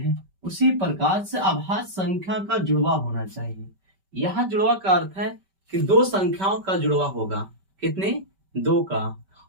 उसी प्रकार से अभाज्य संख्या का जुड़वा होना चाहिए। यहाँ जुड़वा का अर्थ है कि दो संख्याओं का जुड़वा होगा। कितने? दो का।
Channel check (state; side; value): late; left; 5.2 ms